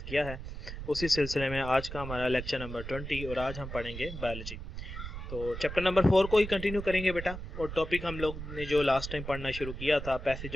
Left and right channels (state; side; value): noise; right; rumble, 8 dB below the sound